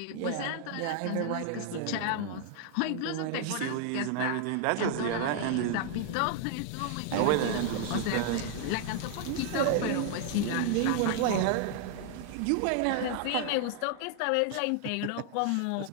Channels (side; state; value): both; different; correlation 0.00